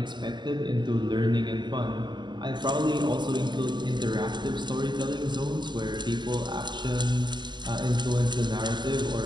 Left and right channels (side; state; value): left; late; 0.22 ms